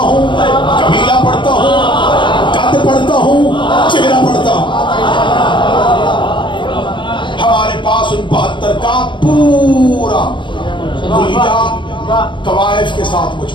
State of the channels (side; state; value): right; late; 0.23 ms